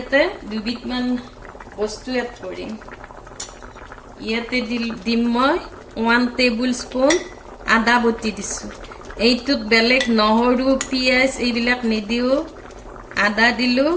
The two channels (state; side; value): identical; both; correlation 1.00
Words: দুবিধমান বস্তু এড কৰিম ইয়াতে দিম মই 1 টেবুল স্পুন আদা বটি দিছো এইটোত বেলেগ নহৰু পিয়াজ এইবিলাক নিদিও আদা দিলো